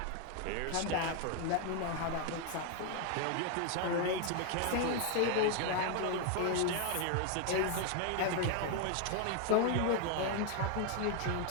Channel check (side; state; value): both; different; correlation 0.00